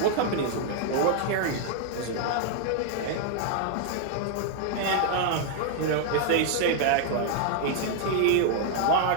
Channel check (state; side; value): different; both; correlation 0.00